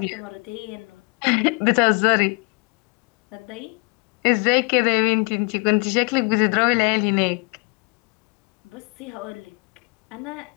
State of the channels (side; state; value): right; quieter; 32.3 dB